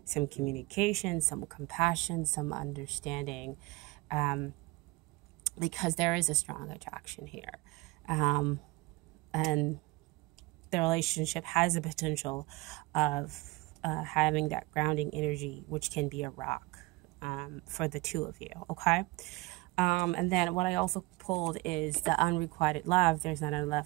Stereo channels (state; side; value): quieter; left; 22.6 dB